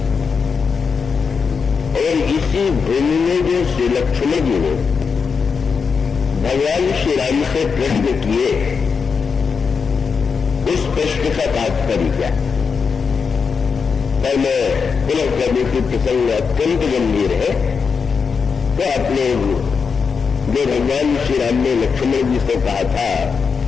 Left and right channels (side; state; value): right; quieter; 5.6 dB